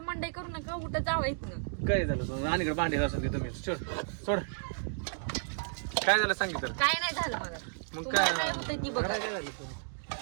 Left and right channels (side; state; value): left; silent; digital silence